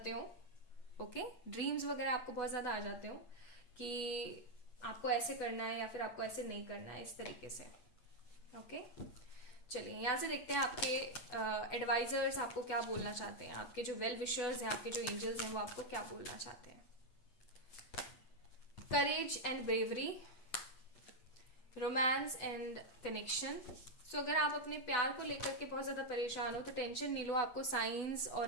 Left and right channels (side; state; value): right; late; 8.1 ms